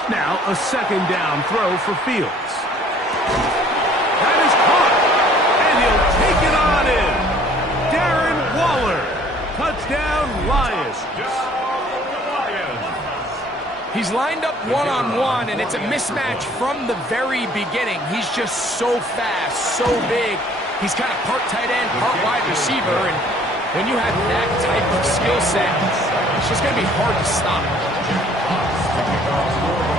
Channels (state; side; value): normal; both; correlation 0.56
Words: Now a 2nd down throw for Fields. That is caught. And he'll take it on in. Darren Waller. Touchdown, Lions. He's lined up one-on-one, and it's a mismatch from the very beginning. He's just so fast, so big. He's kind of part tight end, part wide receiver, and when you have that type of skill set, it's just going to be hard to stop.